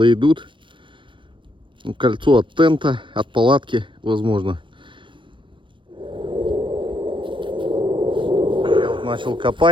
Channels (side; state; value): left; late; 0.24 ms